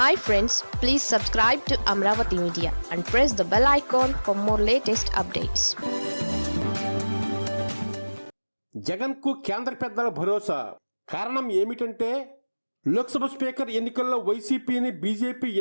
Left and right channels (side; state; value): both; inverted; correlation -1.00